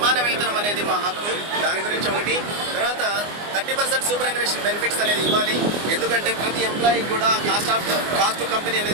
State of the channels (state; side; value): late; left; 24 ms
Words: వేతనం అనేది మా హక్కు. దాని గురించి ఒకటి. తర్వాత 30% సూపర్ అన్వేషన్ బెనిఫిట్స్ అనేది ఇవ్వాలి. ఎందుకంటే ప్రతి ఎంప్లాయీకి కూడా కాస్ట్ టు కంపెనీ